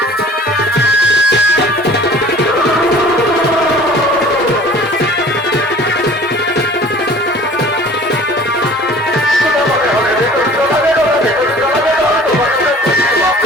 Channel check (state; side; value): normal; both; correlation 0.48